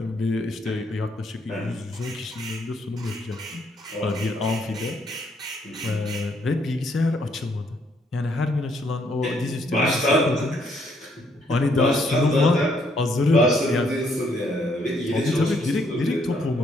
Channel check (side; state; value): both; normal; correlation 0.71